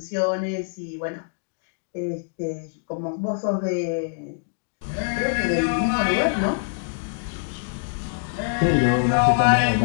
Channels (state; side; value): silent; right; digital silence